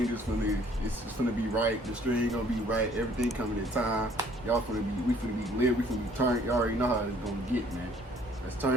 just gonna be right. The string gonna be right. Everything coming in time. Y'all we finna be lit. We finna be turned. Y'all already know how it's gonna get, man. Let's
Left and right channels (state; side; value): normal; both; correlation 0.59